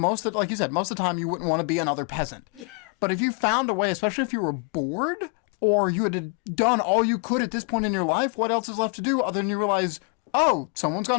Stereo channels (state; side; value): quieter; right; 33.6 dB